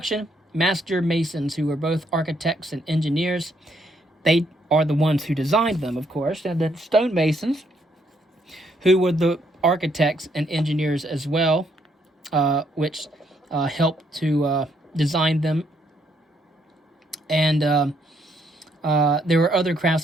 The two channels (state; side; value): normal; both; correlation 0.72